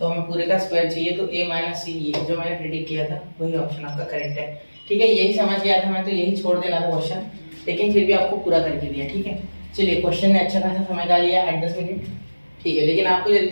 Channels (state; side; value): inverted; both; correlation -1.00